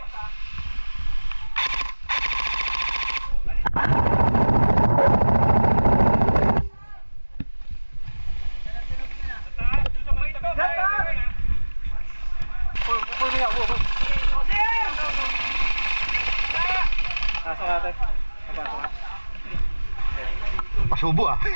Pasok natin. Pasubo ah.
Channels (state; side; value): inverted; both; correlation -1.00